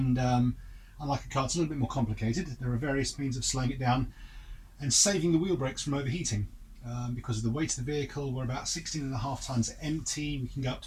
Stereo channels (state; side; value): identical; both; correlation 1.00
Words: unlike a car, it's a little bit more complicated. There are various means of slowing it down and saving the wheel brakes from overheating. Because of the weight of the vehicle, we're about 16.5 tons empty. We can go up